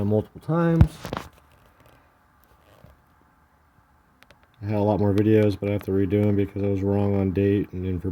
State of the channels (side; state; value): both; identical; correlation 1.00